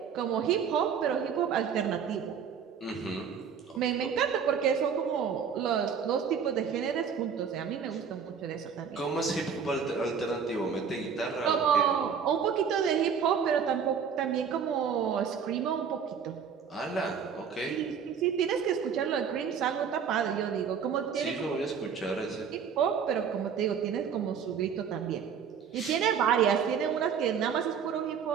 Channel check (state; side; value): quieter; left; 7.0 dB